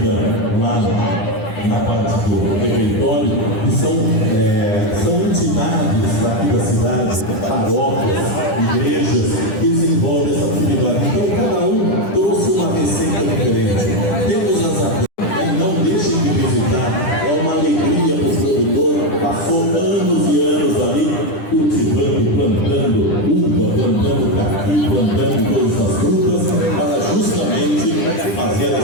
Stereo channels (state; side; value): late; right; 10 ms